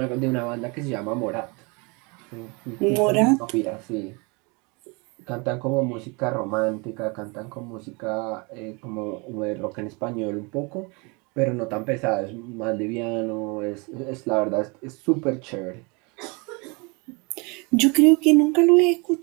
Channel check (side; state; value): left; quieter; 29.7 dB